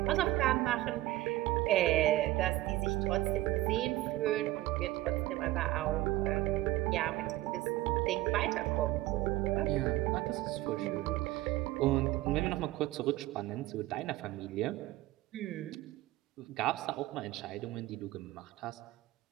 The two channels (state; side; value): quieter; left; 16.9 dB